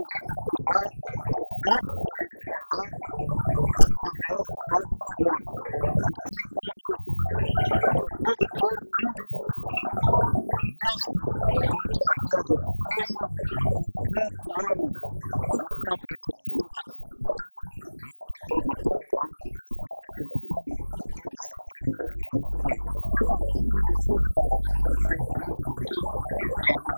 recuperar e vai se recuperar através do agronegócio, de quem produz. E o produtor não desiste. Mesmo com tragédia de cheia, com 4 anos de safra reduzida de estiagem, mas o produtor rural continua acreditando e produzindo alimentos nesse país. Secretário, a grande notícia que saímos hoje daqui, na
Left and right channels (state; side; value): inverted; both; correlation -1.00